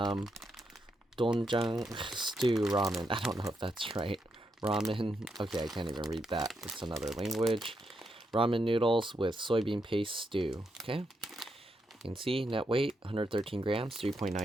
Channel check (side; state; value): both; normal; correlation 0.81